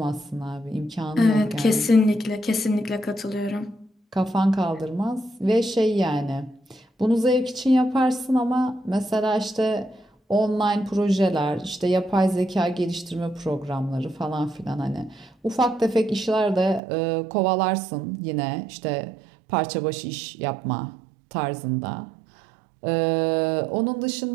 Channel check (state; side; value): drops out; left; at 16.8 s